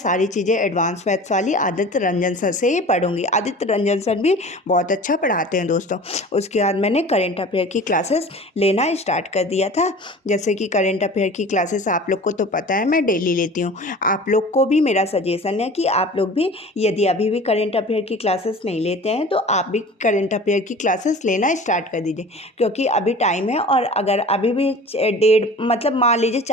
चीज़ें एडवांस मैथ्स वाली आदित्य रंजन सर से ही पढ़ूंगी। आदित्य रंजन सर भी बहुत अच्छा पढ़ाते हैं दोस्तों। उसके बाद मैंने करेंट अफेयर की क्लासेस लेना स्टार्ट कर दिया था। जैसे कि करेंट अफेयर की क्लासेस आप लोग को तो पता है मैं डेली लेती हूँ। आप लोग को भी मेरा सजेशन है कि आप लोग भी, यदि अभी भी करेंट अफेयर की क्लासेस नहीं लेते हैं तो आप भी करेंट अफेयर की क्लासेस लेना स्टार्ट कर दीजिए, क्योंकि अभी टाइम है। और अगर अभी भी डेढ़, मतलब मान लीजिए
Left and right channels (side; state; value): both; normal; correlation 0.40